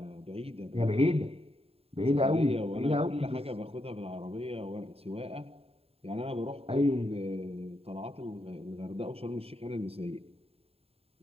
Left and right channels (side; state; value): left; late; 0.29 ms